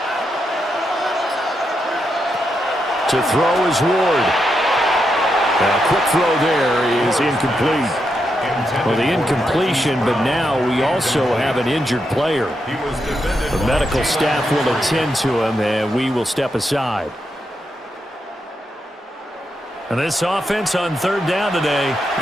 To throw is Ward. Now, quick throw there is incomplete. Well, the incompletion, but now we also have an injured player. The medical staff will attend to him, and we will step aside. And this offense on third down today,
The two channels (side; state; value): both; normal; correlation 0.83